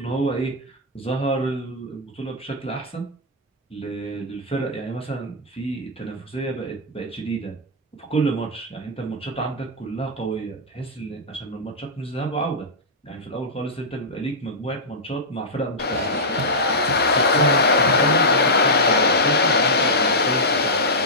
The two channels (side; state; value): both; normal; correlation -0.10